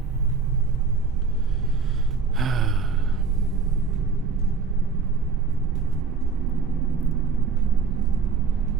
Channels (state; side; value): quieter; left; 4.9 dB